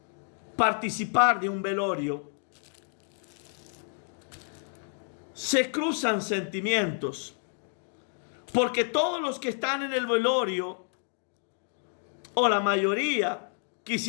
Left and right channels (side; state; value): right; silent; 58 dB below the other